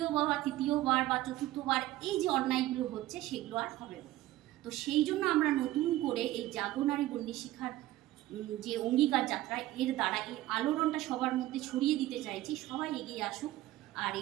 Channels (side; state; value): left; quieter; 15.9 dB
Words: বা তৃতীয়বার বা চতুর্থবার এই যে অন্যায়গুলো হচ্ছে সেগুলো আর হবে না। তো সেই জন্য আমরা নতুন করে এই জাগরণারী বন্দি শিখার যে অঙ্গীকার যাত্রা, এর দ্বারা এই আলোড়নটা সবার মধ্যে ছড়িয়ে দিতে চাইছি, সবাই এগিয়ে আসুক। আর